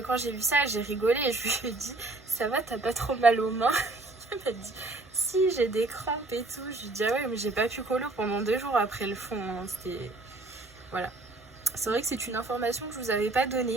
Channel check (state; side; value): quieter; left; 3.0 dB